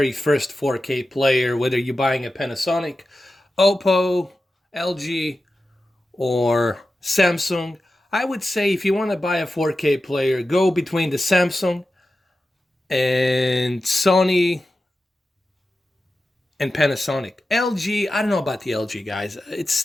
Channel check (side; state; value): both; normal; correlation 0.93